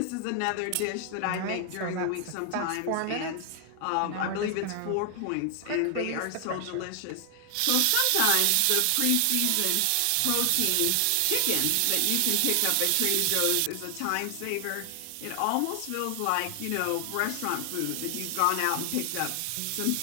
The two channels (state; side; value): different; both; correlation 0.00